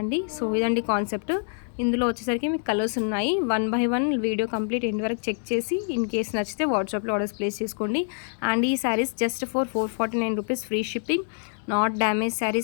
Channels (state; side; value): silent; right; 61 dB below the other